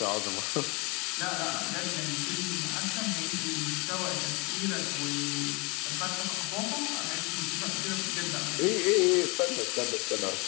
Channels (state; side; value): quieter; right; 28.3 dB